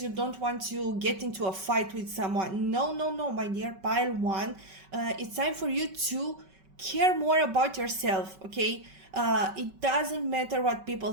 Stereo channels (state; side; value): late; left; 5.3 ms